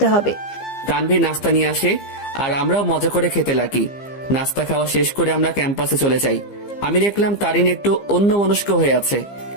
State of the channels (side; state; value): right; late; 15 ms